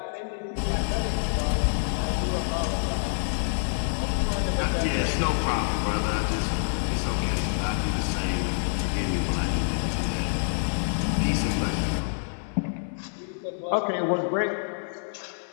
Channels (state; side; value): silent; right; 58 dB below the other